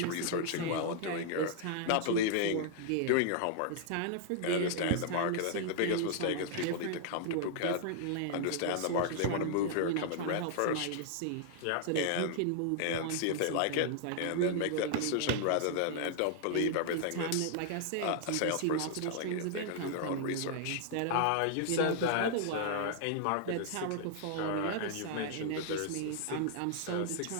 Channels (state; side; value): different; both; correlation -0.01